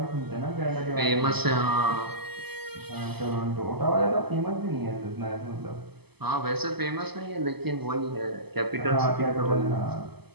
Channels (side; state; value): left; late; 0.97 ms